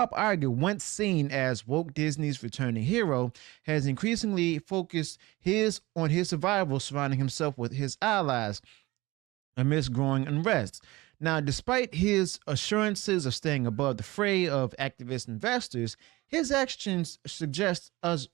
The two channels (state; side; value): quieter; left; 20.5 dB